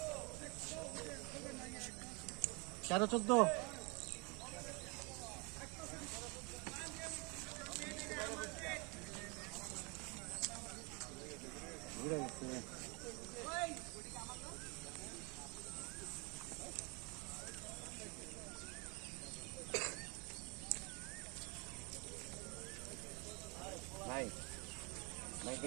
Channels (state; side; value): quieter; left; 30.2 dB